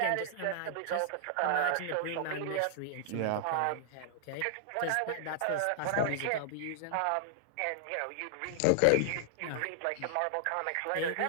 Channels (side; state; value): both; different; correlation -0.01